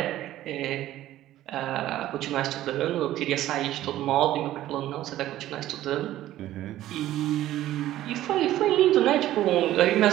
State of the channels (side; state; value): left; quieter; 14.0 dB